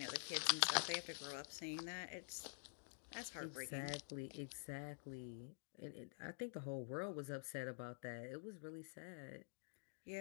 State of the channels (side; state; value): right; silent; digital silence